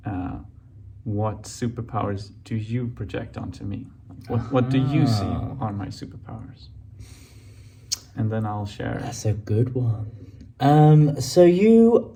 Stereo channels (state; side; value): identical; both; correlation 1.00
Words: what superpowers do you project onto me? What do you see are my superpowers? And then I'll share. That's a good one. So you're